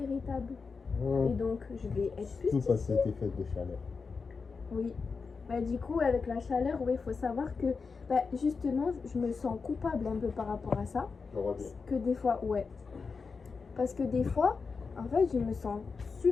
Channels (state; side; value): quieter; right; 4.9 dB